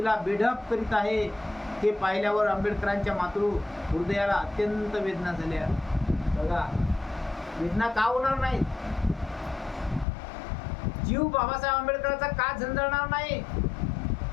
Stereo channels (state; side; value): drops out; right; at 10.1 s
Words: बेढप करीत आहे. हे पाहिल्यावर आंबेडकरांच्या मातृ हृदयाला अत्यंत वेदना झाल्या. बघा, वेदना का होणार नाही? जीव बाबासाहेब आंबेडकरांचा का झंझळणार नाही?